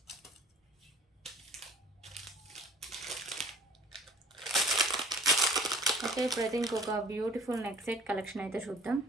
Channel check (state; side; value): normal; both; correlation 0.50